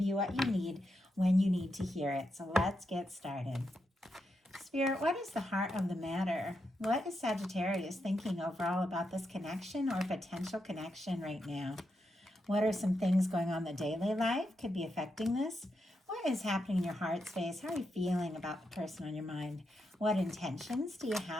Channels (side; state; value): both; normal; correlation 0.84